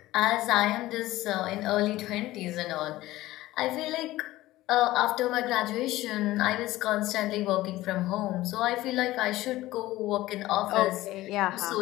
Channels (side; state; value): right; quieter; 16.8 dB